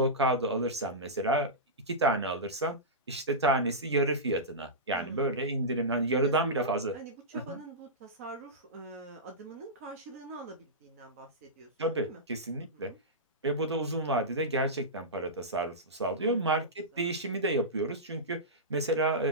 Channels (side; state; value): both; normal; correlation -0.15